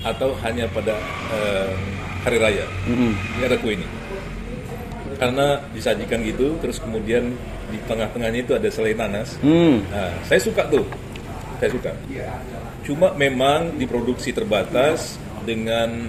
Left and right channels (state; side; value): identical; both; correlation 1.00